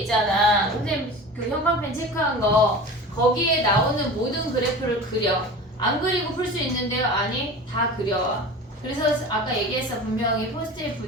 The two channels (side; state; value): both; normal; correlation 0.35